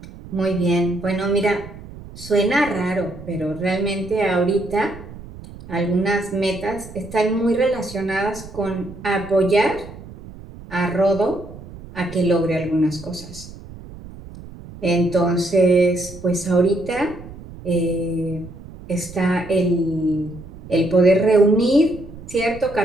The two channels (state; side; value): noise; right; rumble, 16 dB below the sound